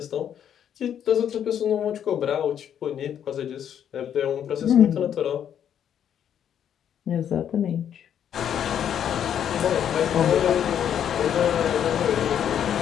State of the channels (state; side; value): quieter; right; 9.3 dB